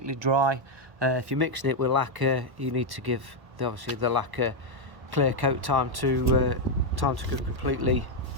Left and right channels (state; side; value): late; left; 1.1 ms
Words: dry. If you're mixing it with lacquer, you need to give obviously the lacquer clear coat time to go completely